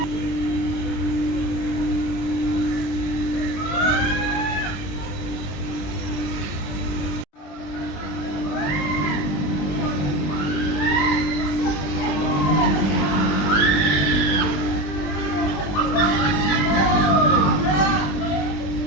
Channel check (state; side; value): late; right; 20 ms